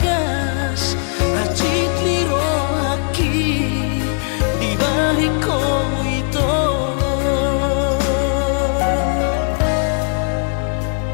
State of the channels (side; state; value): right; silent; 56 dB below the other